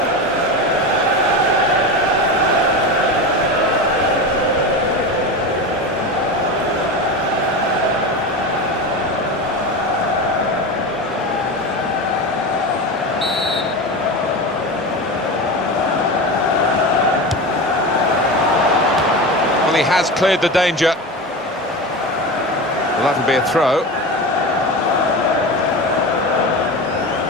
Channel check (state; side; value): normal; both; correlation 0.24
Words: Well, he has cleared the danger. Well, that'll be a throw.